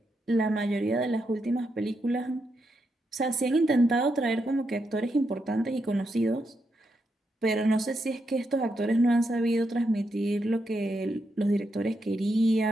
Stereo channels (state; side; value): normal; both; correlation 0.83